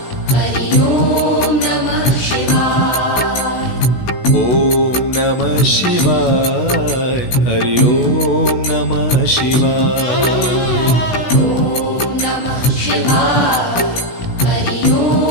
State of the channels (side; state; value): right; late; 16 ms